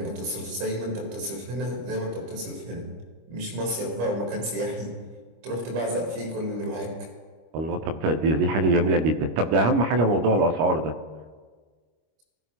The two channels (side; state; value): left; late; 25 ms